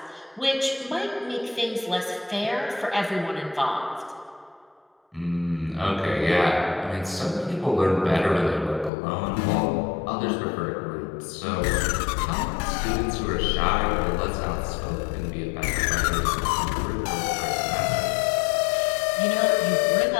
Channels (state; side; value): drops out; right; at 8.9 s